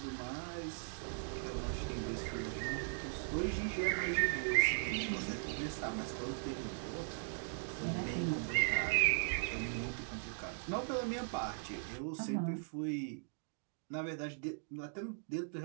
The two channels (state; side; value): silent; left; digital silence